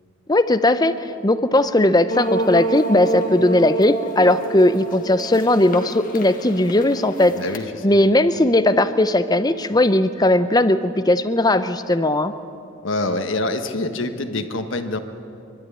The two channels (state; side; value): normal; both; correlation 0.60